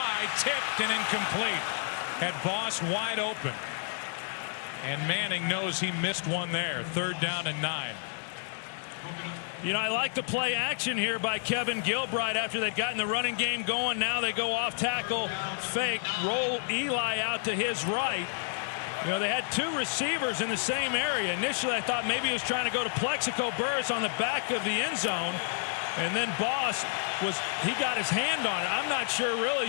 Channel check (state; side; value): silent; right; digital silence